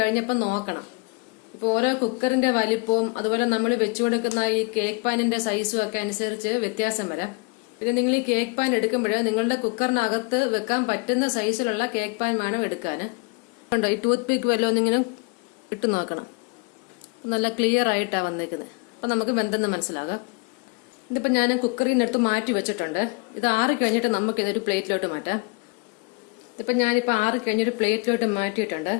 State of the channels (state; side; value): quieter; right; 29.8 dB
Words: കഴിഞ്ഞപ്പോ നോക്കണം. ഇപ്പൊ ഓരോ കുക്കറിന്റെ വലിപ്പവും അതുപോലെ നമ്മൾ വെച്ചു കൊടുക്കുന്ന ഈ കേക്ക് പാനിന്റെ സൈസും ഒക്കെ അനുസരിച്ച് വ്യത്യാസം വരാം. പിന്നെ നിങ്ങൾ ഈ കേക്ക് പാൻ എടുക്കുമ്പോൾ നിങ്ങളുടെ കുക്കറിനകത്ത് വെക്കാൻ പറ്റുന്ന സൈസിലുള്ള കേക്ക് പാൻ വേണം എടുക്കാന്. കണ്ടോ, ഈ ടൂത്ത് പിക്ക് വല്ലതും ഇങ്ങനെ ഇട്ട് നോക്കണം. നല്ല ക്ലിയർ ആയിട്ടാ വന്നേക്കുന്നത്. അപ്പൊ നമുക്ക് വെന്തെന്ന് മനസ്സിലാകാം. ഇതിപ്പോ ഞാൻ കുക്കറിനടുത്ത് മാറ്റി വെച്ചിട്ടുണ്ട്. ഇത് ആറി കഴിഞ്ഞിട്ട് നമുക്ക് ഇതൊരു പ്ലേറ്റിലോട്ട് മാറ്റാം. ഇതിപ്പോ ഞാനിപ്പോ ആറി കഴിഞ്ഞൊരു പ്ലേറ്റിലോട്ട് മാറ്റിയിട്ടുണ്ട്.